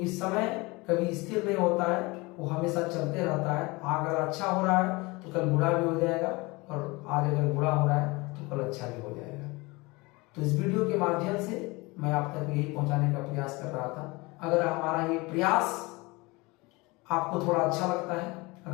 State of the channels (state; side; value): quieter; right; 24.3 dB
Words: समय कभी स्थिर नहीं होता है, वो हमेशा चलते रहता है। अगर अच्छा हो रहा है तो कल बुरा भी हो जाएगा, और आज अगर बुरा हो रहा है तो कल अच्छा भी हो जाएगा। तो इस वीडियो के माध्यम से मैं आप तक यही पहुंचाने का प्रयास कर रहा था। अगर हमारा ये प्रयास आपको थोड़ा अच्छा लगता है,